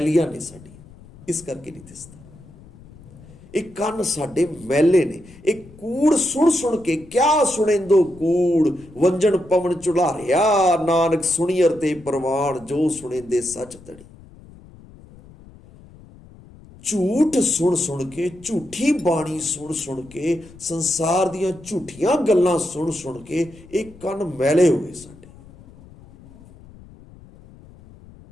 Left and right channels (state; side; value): noise; left; rumble, 22 dB below the sound